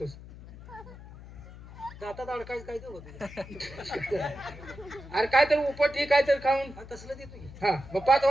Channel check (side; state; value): left; noise; hum, 16 dB below the sound